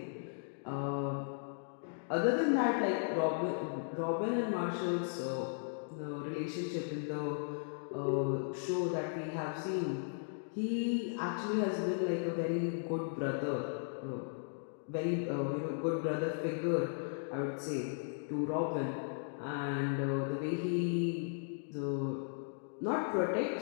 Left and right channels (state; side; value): silent; right; digital silence